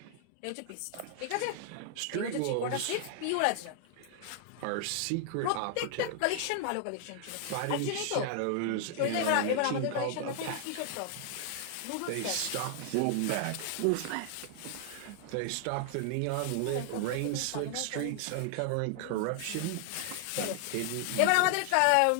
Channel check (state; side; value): different; both; correlation 0.00